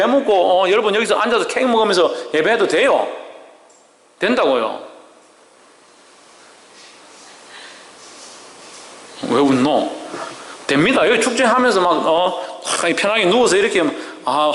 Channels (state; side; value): identical; both; correlation 1.00